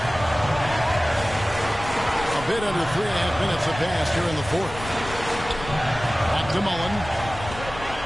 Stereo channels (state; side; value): noise; left; rumble, 12 dB below the sound